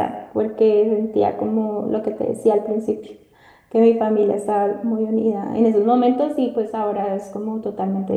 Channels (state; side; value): identical; both; correlation 1.00